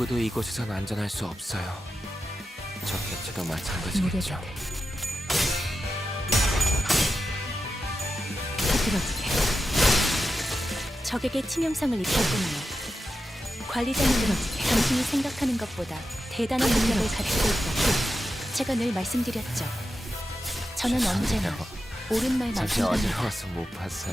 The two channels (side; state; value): both; normal; correlation 0.90